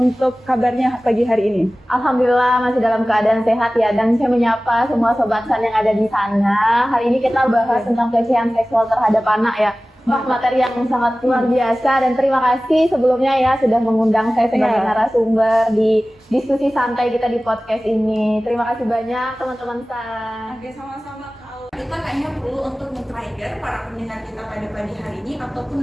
kabarnya pagi hari ini? Alhamdulillah masih dalam keadaan sehat ya, dan saya menyapa semua Sobat San yang ada di sana. Hari ini kita bahas tentang pelecehan seksual terhadap anak ya. Wah, materi yang sangat luar biasa, dan terima kasih sebelumnya ya sudah mengundang saya sebagai narasumber di diskusi santai kita di podcast ini. Terima kasih banyak teman-teman San. Oke, sama-sama Kak Aul. Kita kayaknya perlu untuk men-trigger para pendengar kita pada pagi hari ini ataupun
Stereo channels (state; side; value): normal; both; correlation 0.97